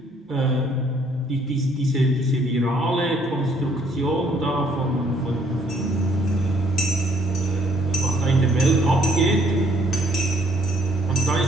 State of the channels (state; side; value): normal; both; correlation 0.65